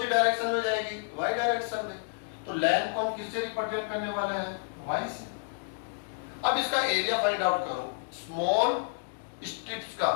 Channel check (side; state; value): right; silent; digital silence